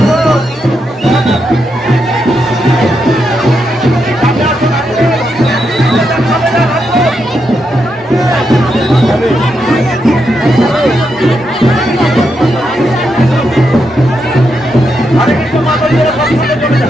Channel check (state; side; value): normal; both; correlation 0.83